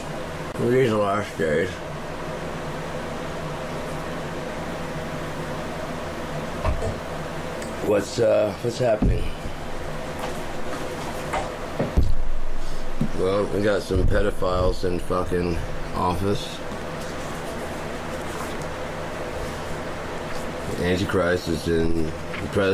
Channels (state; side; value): identical; both; correlation 1.00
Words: these are the last days. What's happening? Well, we got some pedophiles in fucking office. Antichrist is in the